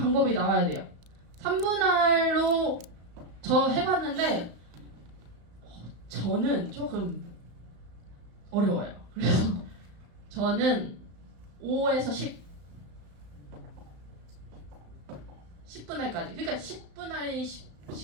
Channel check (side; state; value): left; late; 35 ms